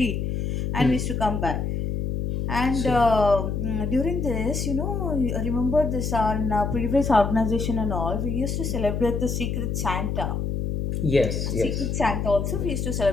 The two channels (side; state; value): left; noise; hum, 1 dB below the sound